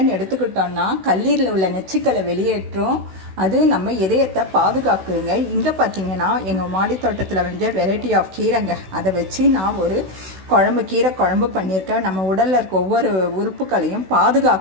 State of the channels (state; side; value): late; left; 16 ms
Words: எடுத்துக்கிட்டோன்னா கல்லீரில் உள்ள நச்சுக்களை வெளியேற்றும். அது நம்ம இதயத்தை பாதுகாக்குதுங்க. இங்கே பார்த்தீங்கன்னா எங்கள் மாடி தோட்டத்தில் விளைஞ்ச வெரைட்டி ஆஃப் கீரைங்க, அதை வச்சு நான் ஒரு கீரை குழம்பு பண்ணியிருக்கேன். நம்ம உடலில் இருக்க ஒவ்வொரு உறுப்புகளையும்